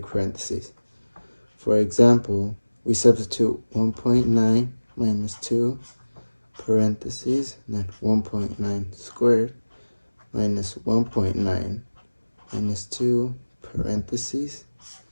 parentheses. For example, we substitute 1.9 minus 2 parentheses, and then 1.9 squared minus 1.9 minus 2 parentheses.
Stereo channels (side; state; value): both; inverted; correlation -1.00